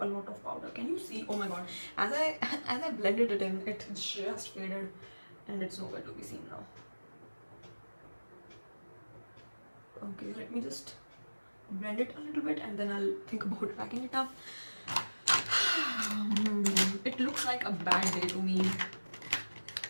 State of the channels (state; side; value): inverted; both; correlation -1.00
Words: a lot of powder. Can you see? Oh my god! As I blended it in, it just faded, and it's nowhere to be seen now. Okay, let me just blend it a little bit, and then I'll think about packing it up. It looks like a bad day to me,